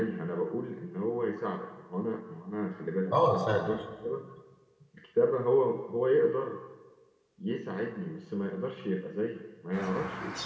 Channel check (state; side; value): identical; both; correlation 1.00